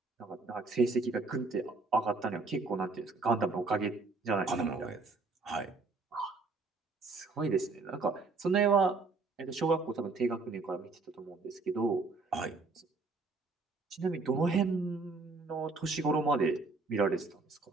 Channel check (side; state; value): left; quieter; 3.9 dB